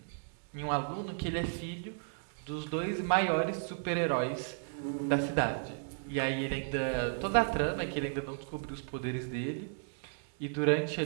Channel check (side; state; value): left; silent; digital silence